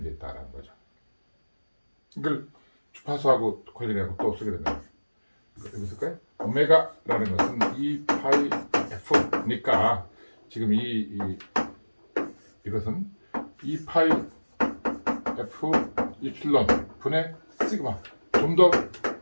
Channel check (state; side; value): inverted; both; correlation -1.00